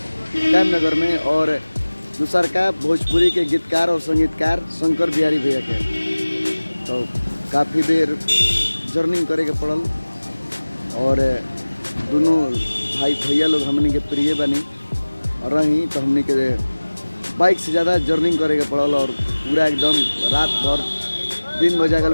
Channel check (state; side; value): inverted; both; correlation -1.00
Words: कैम नगर में। और दूसर का भोजपुरी के गीतकार और संगीतकार शंकर बिहारी भैया के। तो काफ़ी देर जर्निंग करे के पड़ल। और दोनों भाई भैया लोग हमनी के प्रिय बनी और रही, तो हमनी के बाइक से ज़्यादा जर्निंग करे के पड़ल। और पूरा एकदम रात भर दिन बजा गल